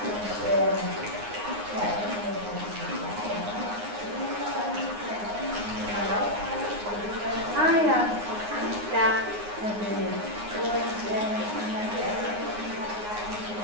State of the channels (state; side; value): late; left; 9.6 ms